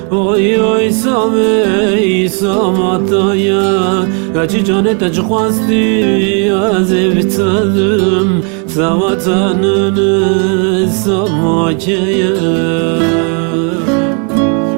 oy oy samey samataya Kaçı canete çıkmazdı az ev tadım Savatanını samakaya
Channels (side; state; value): left; quieter; 38.4 dB